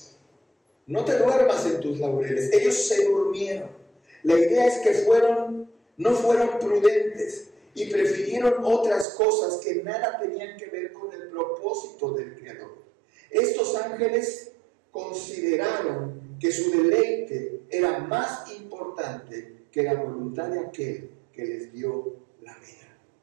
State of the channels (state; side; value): drops out; left; at 9.1 s